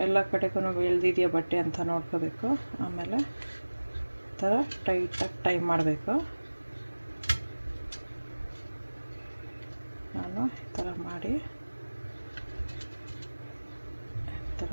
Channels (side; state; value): both; inverted; correlation -1.00